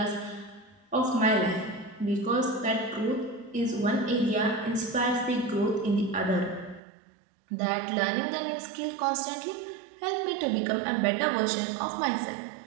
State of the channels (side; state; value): left; drops out; at 6.8 s